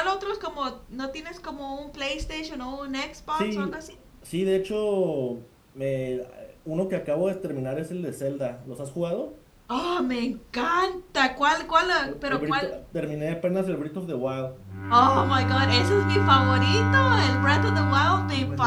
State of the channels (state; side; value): identical; both; correlation 1.00